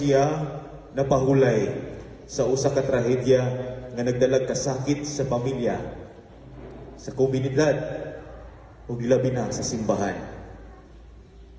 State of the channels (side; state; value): both; identical; correlation 1.00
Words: napahulay sa usa ka trahedya nga nagdalag kasakit sa pamilya, sa komunidad, o gilabi na sa simbahan.